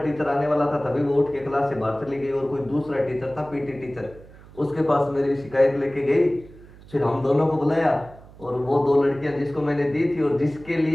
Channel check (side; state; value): right; noise; hum, 21 dB below the sound